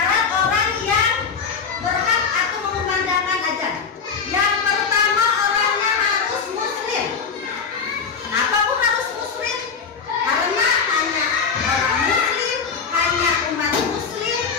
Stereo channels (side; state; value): right; quieter; 5.8 dB